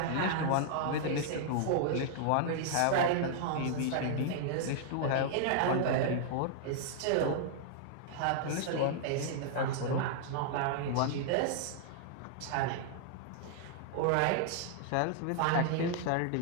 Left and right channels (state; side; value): different; both; correlation -0.01